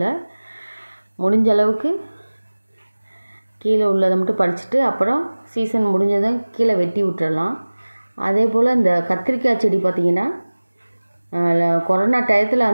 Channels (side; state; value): both; inverted; correlation -1.00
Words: முடிஞ்ச அளவுக்கு கீழே உள்ளதை மட்டும் பறிச்சுட்டு அப்புறம் சீசன் முடிஞ்சதும் கீழே வெட்டி விட்டுறலாம். அதே போல் இந்த கத்திரிக்காய் செடி பார்த்திங்கன்னா கொரோனா டயத்தில்